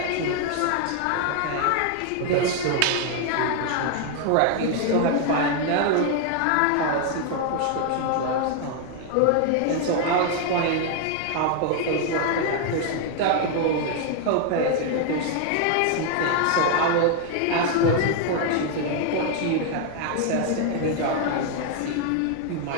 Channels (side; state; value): both; different; correlation 0.00